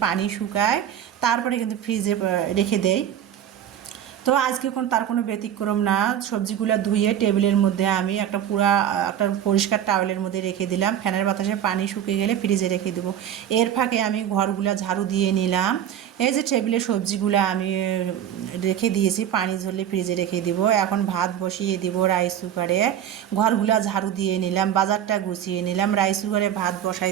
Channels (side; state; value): left; quieter; 10.1 dB